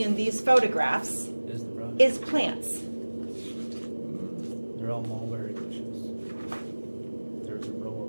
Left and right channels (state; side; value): inverted; both; correlation -1.00